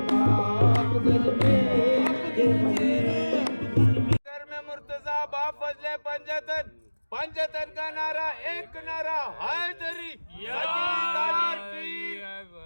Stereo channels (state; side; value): inverted; both; correlation -1.00